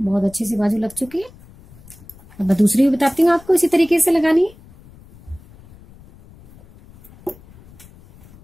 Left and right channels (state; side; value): noise; left; rumble, 23 dB below the sound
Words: अच्छे से बाजू लग चुकी है। अब मैं दूसरी भी बताती हूँ आपको इसी तरीके से लगानी है।